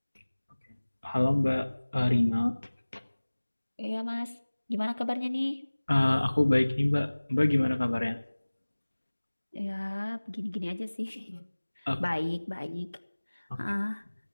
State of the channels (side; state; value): both; inverted; correlation -1.00